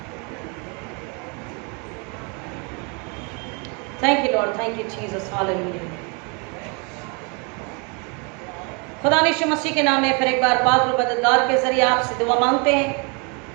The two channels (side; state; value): left; quieter; 33.8 dB